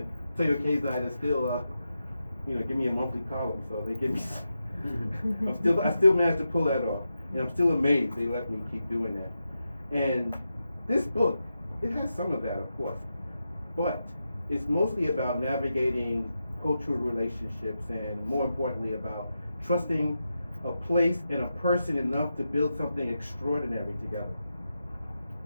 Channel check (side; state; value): both; inverted; correlation -0.88